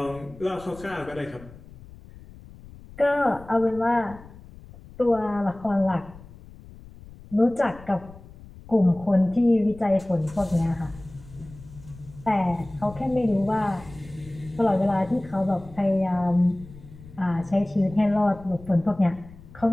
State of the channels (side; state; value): left; noise; rumble, 19 dB below the sound